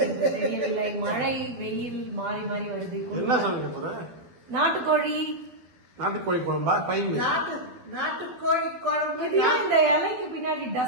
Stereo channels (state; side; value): late; left; 12 ms